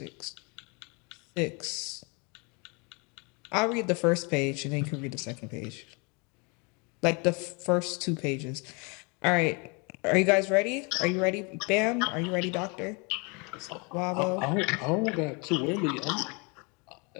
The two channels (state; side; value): quieter; right; 31.3 dB